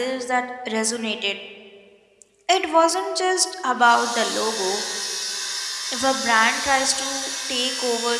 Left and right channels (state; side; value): identical; both; correlation 1.00